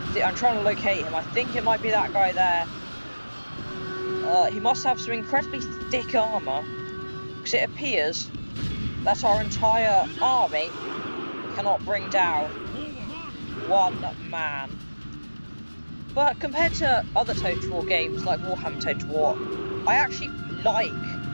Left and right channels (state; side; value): inverted; both; correlation -1.00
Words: trying to locate him. I think it might be that guy there. He must have some incredibly thick armour, because it appears that our entire army cannot bring down one man. But compared to other Total War games like Warhammer Total War, I actually like